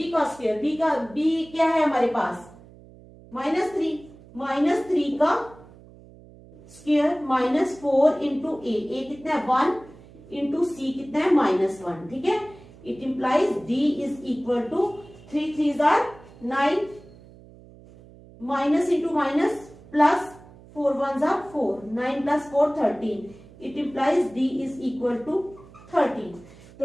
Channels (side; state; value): right; noise; hum, 22 dB below the sound